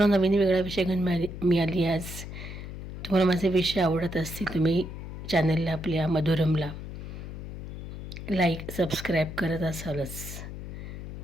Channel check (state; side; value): noise; left; hum, 9 dB below the sound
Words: नवीन वेगळा विषय घेऊन मिळाली. आज तुम्हाला माझे विषय आवडत असतील, तुम्ही चॅनलला आपल्या मधुरमला लाईक सबस्क्राईब करत असालच